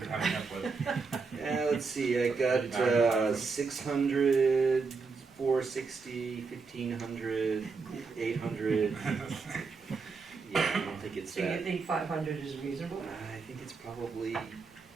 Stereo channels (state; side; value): quieter; left; 4.7 dB